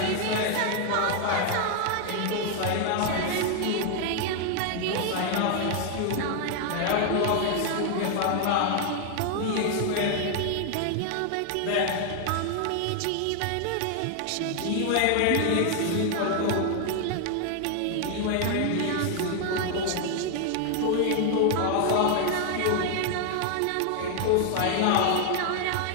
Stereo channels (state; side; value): different; both; correlation 0.00